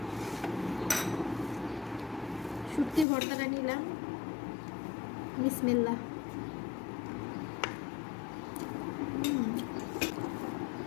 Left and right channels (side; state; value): right; drops out; at 3.1 s